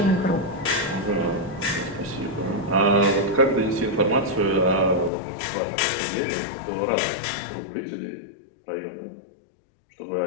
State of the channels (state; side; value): drops out; right; at 5.1 s